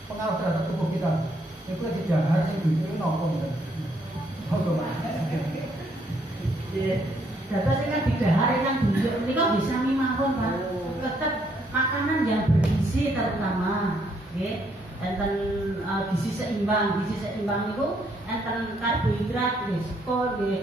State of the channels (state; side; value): normal; both; correlation 0.71